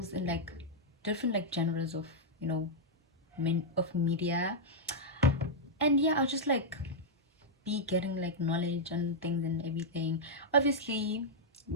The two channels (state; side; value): normal; both; correlation -0.05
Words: in like different like genres of, you know, of media. And yeah, I'll just like be getting like knowledge and things and everything. Obviously,